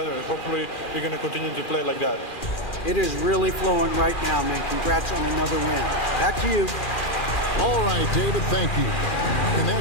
Hopefully we're going to continue to play like that. It is really flowing right now, man. Congrats on another win. Back to you. All right, David, thank you. And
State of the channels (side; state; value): right; late; 2.4 ms